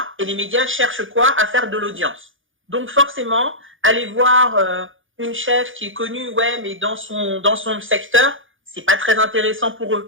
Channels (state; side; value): late; left; 0.58 ms